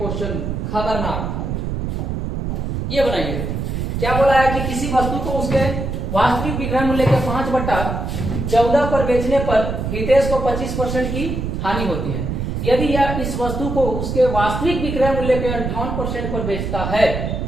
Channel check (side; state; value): right; noise; rumble, 3 dB below the sound